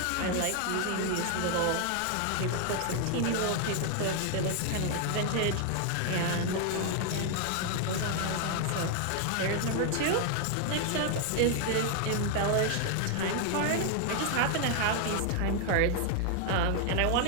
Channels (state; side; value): different; both; correlation 0.00